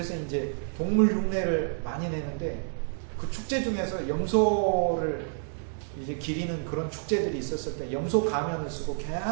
이제 동물 흉내를 많이 내는데, 그 축제 중에서 염소를 이제 기리는 그런 축제들이 있었을 때 염소 가면을 쓰고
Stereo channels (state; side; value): silent; left; 59 dB below the other